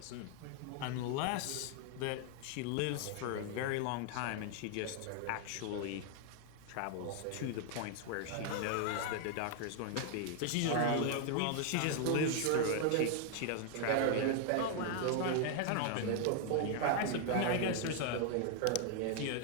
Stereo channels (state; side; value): different; both; correlation 0.00